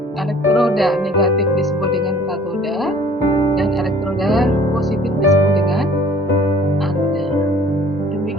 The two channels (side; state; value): both; normal; correlation 0.52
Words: elektroda negatif disebut dengan katoda dan elektroda positif disebut dengan anoda.